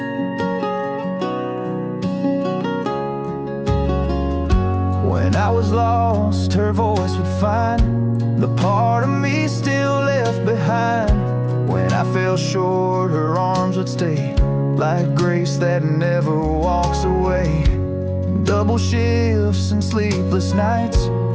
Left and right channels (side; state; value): both; identical; correlation 1.00